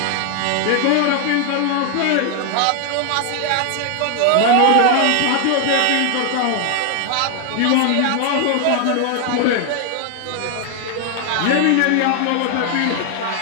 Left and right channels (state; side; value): different; both; correlation 0.00